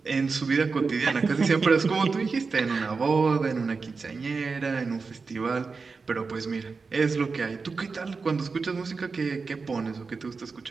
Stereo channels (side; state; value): left; quieter; 4.6 dB